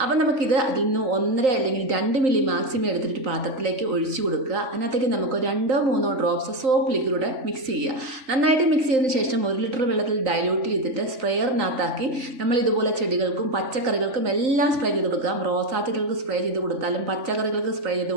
അപ്പം നമുക്കിത് അതിൽ നിന്ന് 1.5 അല്ലെങ്കിൽ 2 മില്ലി മാക്സിമം എടുത്തിട്ട് പാത്രത്തിലേക്ക് ഒഴിച്ചു കൊടുക്കുക. അതിനകത്തേക്ക് നമുക്ക് 2-3 ഡ്രോപ്സ് സോപ്പ് ലിക്വിഡ് മിക്സ് ചെയ്യുക. നന്നായിട്ട് മിക്സ് ചെയ്തതിന് ശേഷം 1 ലിറ്റർ വെള്ളത്തിൽ ഡൈല്യൂട്ട് ചെയ്തിട്ട് സ്പ്രെയറിനകത്താക്കി നമ്മൾ ഇതുപോലെ ചെടികൾക്കും പച്ചക്കറികൾക്കും എല്ലാം സ്പ്രേ ചെയ്ത് കൊടുക്കാം. റോസാ ചെടികൾക്ക് സ്പ്രേ ചെയ്ത് കൊടുത്താലും പച്ചക്കറികൾക്ക് സ്പ്രേ ചെയ്ത്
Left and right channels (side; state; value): left; late; 3.9 ms